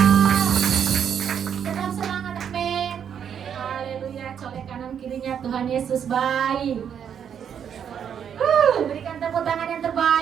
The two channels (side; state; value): left; quieter; 8.2 dB